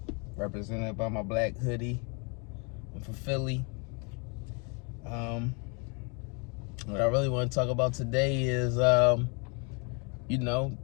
represented by my black hoodie. I'm from Philly. What I really want to talk about today is, I'm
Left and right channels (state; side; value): quieter; right; 34.3 dB